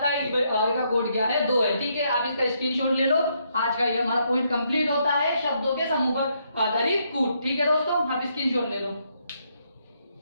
है आगे का कोड क्या है, 2 है। ठीक है, आप इसका स्क्रीनशॉट ले लो, आज का ये हमारा पॉइंट कंप्लीट होता है, शब्दों के समूह पर आधारित कूट। ठीक है दोस्तों, आप स्क्रीनशॉट ले लो।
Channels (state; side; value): inverted; both; correlation -0.75